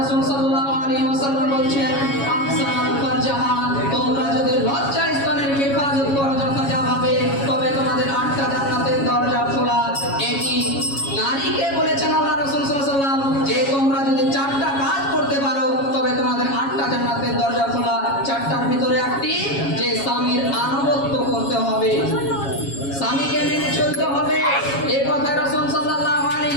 সাল্লাল্লাহু আলাইহি ওয়াসাল্লাম বলছেন আহসানাল ফারজাহা, তোমরা যদি লজ্জা স্থানের হেফাজত করো যথাযথভাবে তবে তোমাদের 8টা জান্নাতের দরজা খোলা। এটি নারীকে বলেছেন আল্লাহ রাসূল সাল্লাল্লাহু আলাইহি ওয়াসাল্লাম যে তোমরা যদি 4টা কাজ করতে পারো তবে তোমাদের 8টা জান্নাতের দরজা খোলা। 4টার ভিতরে একটি যে স্বামীর আনুগত্য করতে হবে, স্বামীকে মেনে চলতে হবে। এই কথা রাসূল সাল্লাল্লাহু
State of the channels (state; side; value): late; right; 7.3 ms